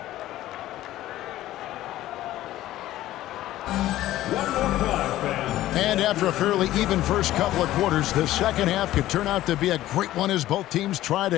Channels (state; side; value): quieter; right; 14.7 dB